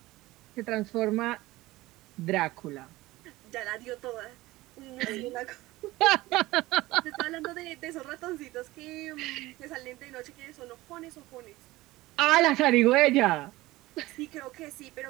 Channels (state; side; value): quieter; left; 18.7 dB